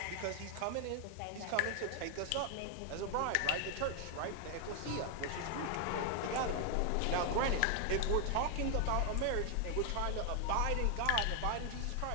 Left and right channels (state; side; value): different; both; correlation 0.00